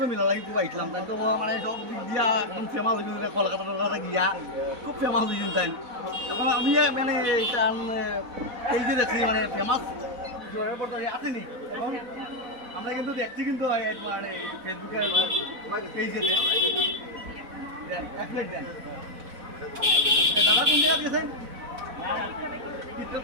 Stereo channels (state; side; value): late; left; 4.0 ms